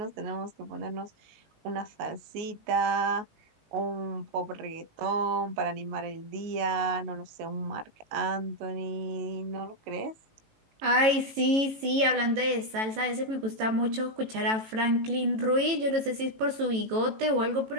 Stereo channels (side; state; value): left; late; 18 ms